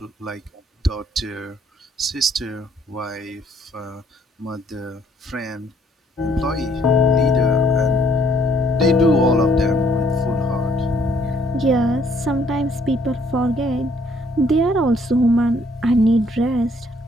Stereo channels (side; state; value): both; normal; correlation 0.64